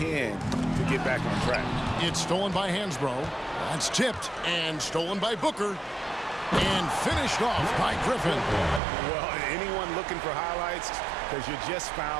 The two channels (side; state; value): left; drops out; at 8.8 s